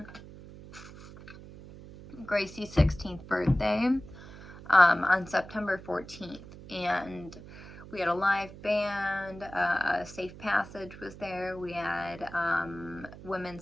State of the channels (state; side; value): noise; right; hum, 16 dB below the sound